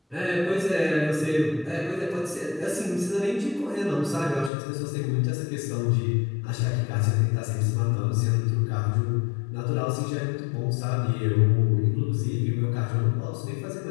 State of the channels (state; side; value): drops out; right; at 4.5 s